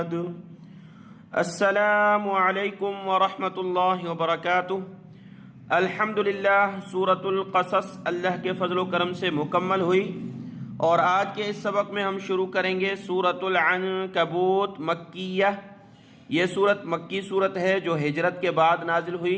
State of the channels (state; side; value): identical; both; correlation 1.00